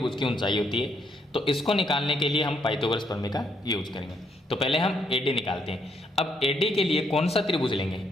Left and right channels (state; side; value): normal; both; correlation 0.74